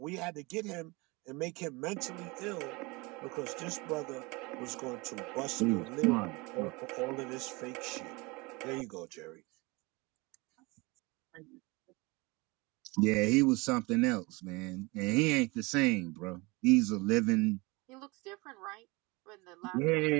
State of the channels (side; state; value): left; quieter; 25.4 dB